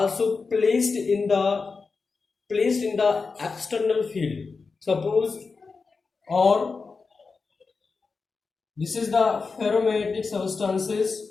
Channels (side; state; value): right; quieter; 4.6 dB